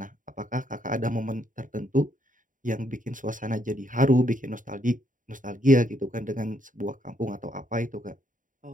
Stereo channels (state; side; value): late; left; 0.38 ms